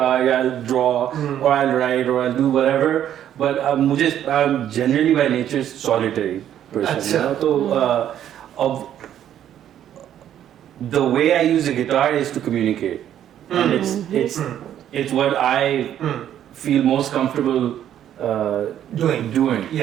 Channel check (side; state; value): left; quieter; 10.7 dB